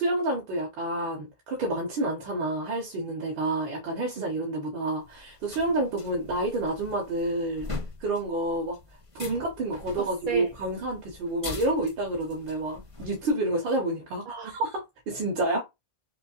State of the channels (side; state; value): left; late; 1.5 ms